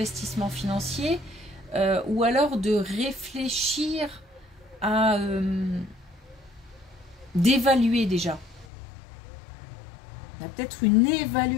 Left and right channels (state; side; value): drops out; right; at 8.7 s